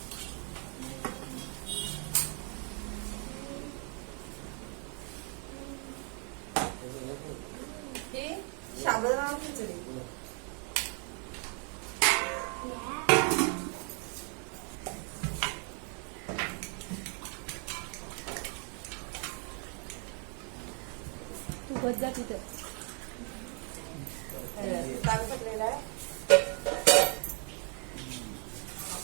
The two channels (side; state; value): left; quieter; 39.2 dB